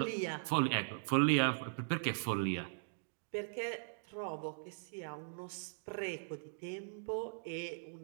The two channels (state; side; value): silent; left; digital silence